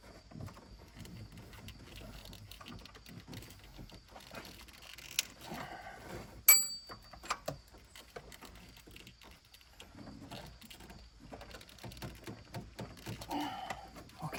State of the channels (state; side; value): identical; both; correlation 1.00